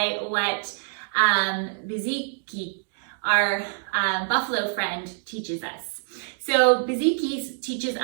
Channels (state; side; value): silent; left; digital silence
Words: what Bizhiki, our buffalo friend, teaches us. So Bizhiki teaches